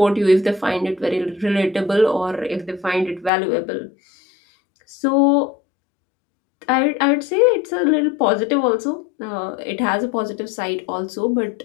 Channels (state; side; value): drops out; right; at 3.3 s